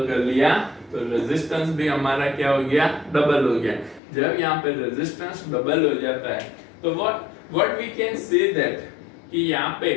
कर लिया तो रेजिस्टेंस भी हमारा क्या हो गया, डबल हो गया। जब यहाँ पे रेजिस्टेंस डबल हो जाता है तो what we can say that कि यहाँ पे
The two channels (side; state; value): right; drops out; at 4.0 s